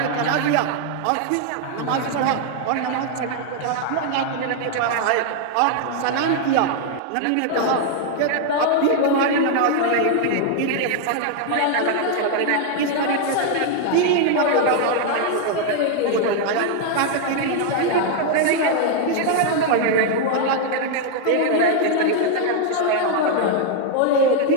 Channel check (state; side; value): different; both; correlation 0.00